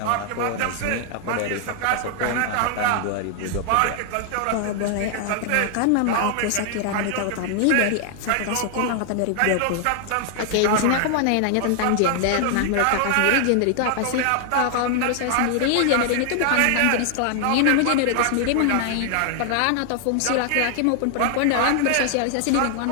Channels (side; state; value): both; different; correlation 0.00